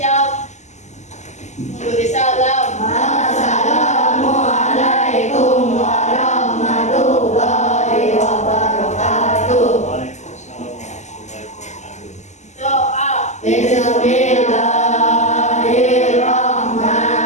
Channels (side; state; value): right; late; 0.34 ms